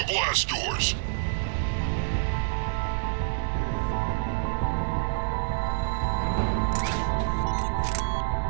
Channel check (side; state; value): left; silent; 60 dB below the other